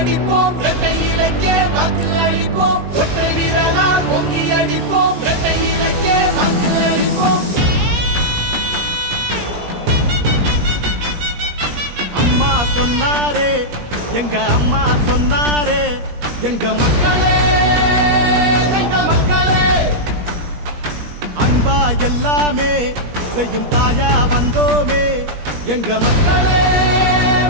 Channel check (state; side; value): late; left; 17 ms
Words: இரட்டை இலக்கே வாக்கு அளிப்போம் ஒற்றை வீரலால் பொங்கி அடிப்போம் இரட்டை இலக்கே வாக்கு அளிப்போம். அம்மா சொன்னாரே எங்க அம்மா சொன்னாரே எங்க மக்களே எங்க மக்களே அன்பா எல்லாமே செய்யும் தாயா வந்தோமே எங்க மக்களே